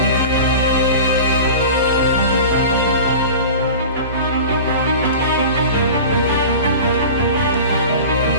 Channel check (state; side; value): inverted; both; correlation -0.35